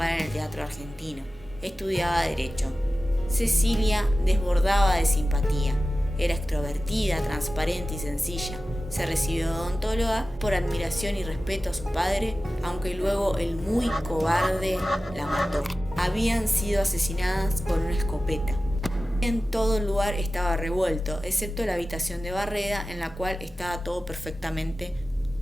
en el teatro argentino. Estudiaba Derecho. Cecilia desbordaba de simpatía. Era extrovertida, transparente y sencilla. Se recibió de odontóloga por admiración y respeto a su padre, aunque luego el muy cobarde la mató. Habían sido asesinadas con una escopeta. En todo el lugar estaba revuelto, excepto la habitación de Barreda, en la cual estaba todo perfectamente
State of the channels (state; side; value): normal; both; correlation 0.95